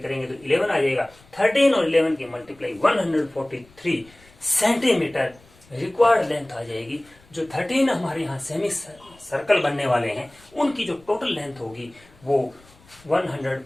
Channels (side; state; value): left; noise; rumble, 27 dB below the sound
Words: करेंगे तो 11 आ जाएगा। 13 और 11 की मल्टीप्लाई 143 सेंटीमीटर रिक्वायर्ड लेंथ आ जाएगी। जो 13 हमारे यहाँ सेमी सर्कल बनने वाले हैं उनकी जो टोटल लेंथ होगी वो